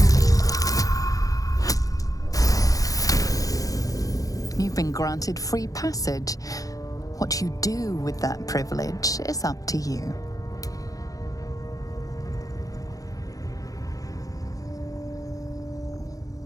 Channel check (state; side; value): late; right; 0.17 ms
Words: You've been granted free passage. What you do with that privilege is up to you.